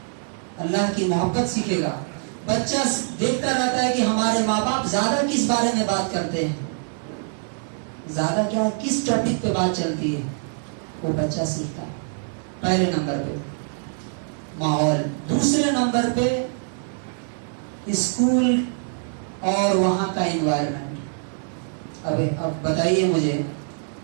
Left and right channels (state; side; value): silent; left; 63 dB below the other